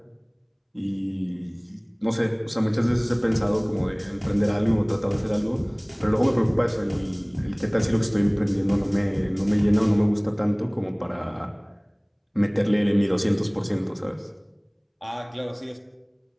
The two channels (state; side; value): identical; both; correlation 1.00